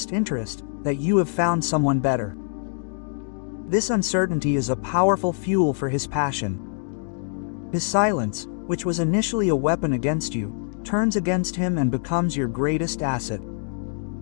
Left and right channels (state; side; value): silent; right; digital silence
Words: interest, that you have found someone better. This uncertainty is a powerful fuel for his passion. His silence, which was initially a weapon against you, turns against him and becomes your greatest asset.